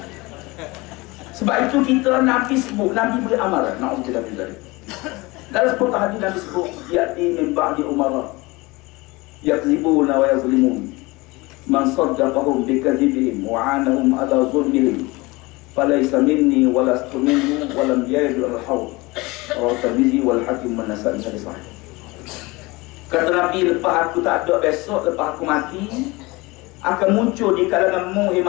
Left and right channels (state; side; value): quieter; right; 23.2 dB